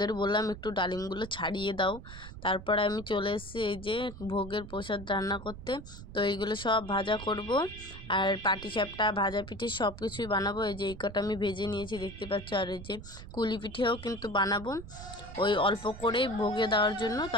বললাম একটু ডালিমগুলো ছাড়িয়ে দাও। তারপরে আমি চলে এসেছি এই যে ভোগের প্রসাদ রান্না করতে। তো এইগুলো সব ভাজা করব, আর পাটিসাপটা ভাজা পিঠে সব কিছুই বানাবো। এই যে এই কটা আমি ভেজে নিয়েছি দেখতে পাচ্ছ, আর এই যে কুলি পিঠেও কিন্তু বানাবো ওই অল্প করেই ভোগে দেওয়ার জন্য।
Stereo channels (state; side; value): noise; right; rumble, 13 dB below the sound